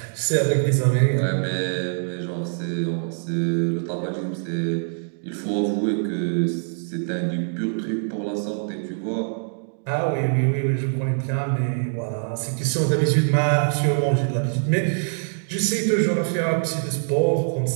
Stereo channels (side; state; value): left; silent; digital silence